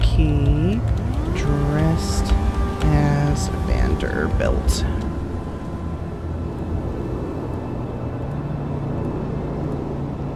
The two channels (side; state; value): both; identical; correlation 1.00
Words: Key dressed as Vanderbilt.